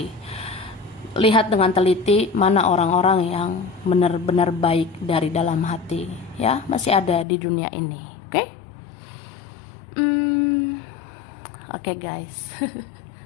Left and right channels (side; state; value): right; drops out; at 7.2 s